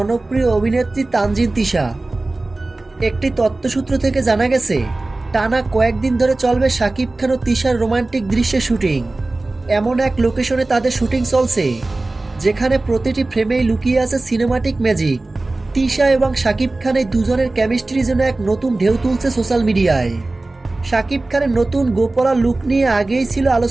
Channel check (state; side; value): quieter; left; 3.0 dB